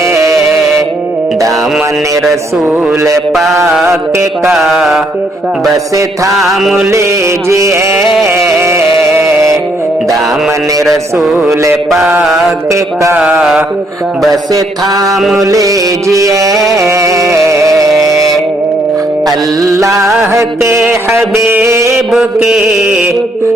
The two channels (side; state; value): both; normal; correlation 0.71